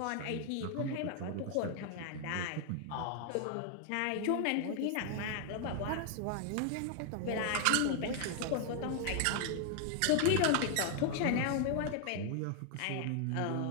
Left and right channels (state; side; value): different; both; correlation 0.00